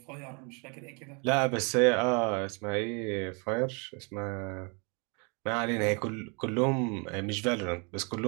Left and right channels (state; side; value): quieter; left; 34.4 dB